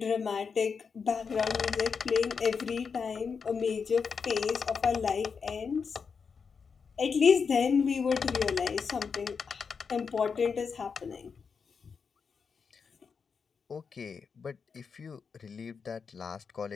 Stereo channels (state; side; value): quieter; right; 5.7 dB